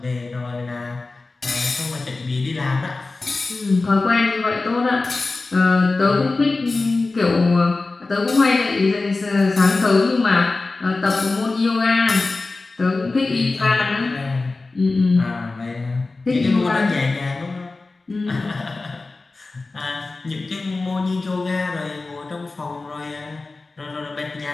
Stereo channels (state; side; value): quieter; right; 3.5 dB